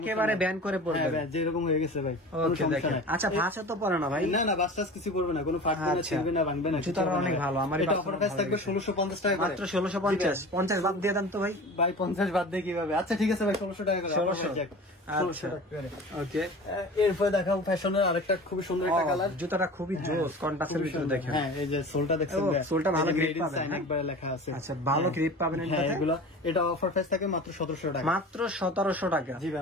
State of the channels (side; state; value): both; normal; correlation 0.37